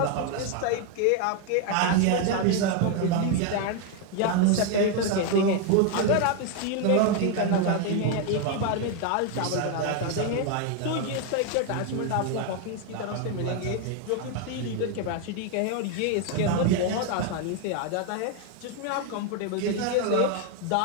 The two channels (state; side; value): different; both; correlation 0.01